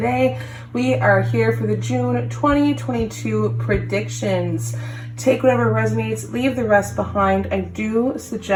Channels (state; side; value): identical; both; correlation 1.00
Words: we are here for the June 2022 predictions. Take whatever resonates, leave the rest behind. I do